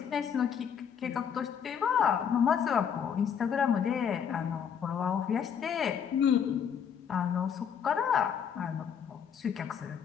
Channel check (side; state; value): right; quieter; 7.7 dB